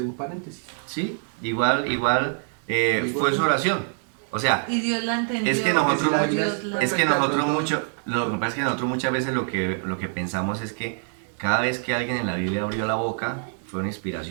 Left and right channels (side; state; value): left; silent; 61 dB below the other